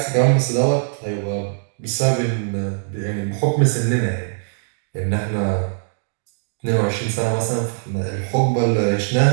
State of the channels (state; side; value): silent; left; digital silence